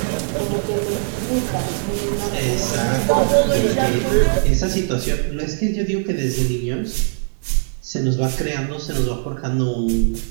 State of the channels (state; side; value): silent; left; digital silence